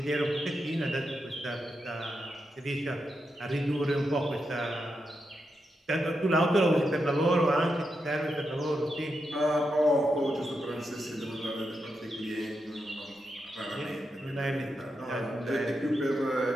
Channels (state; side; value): normal; both; correlation 0.86